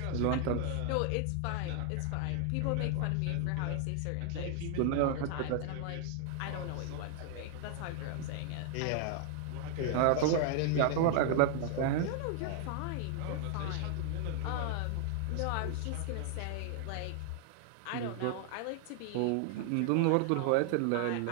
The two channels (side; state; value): both; different; correlation 0.00